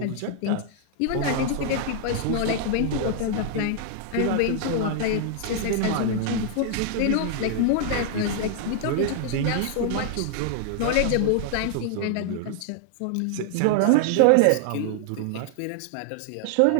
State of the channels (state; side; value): different; both; correlation 0.00